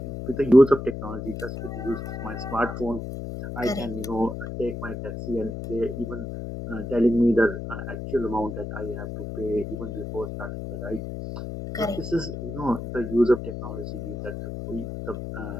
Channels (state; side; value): noise; left; hum, 6 dB below the sound